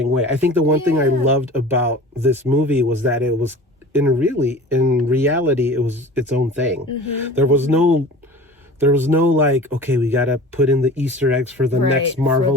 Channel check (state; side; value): normal; both; correlation 0.39